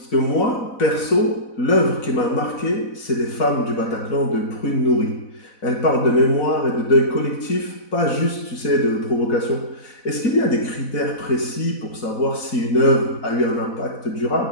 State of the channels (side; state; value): right; late; 4.0 ms